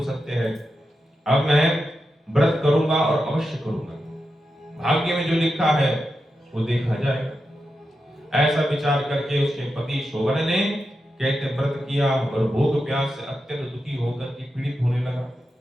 सत्य है, अब मैं व्रत करूंगा और अवश्य करूंगा, भाग्य में जो लिखा है वो देखा जाएगा। ऐसा विचार करके उसके पति शोभन ने कहते व्रत किया और भूख प्यास से अत्यंत दुखी होकर के पीड़ित होने लगा।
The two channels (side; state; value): both; normal; correlation 0.89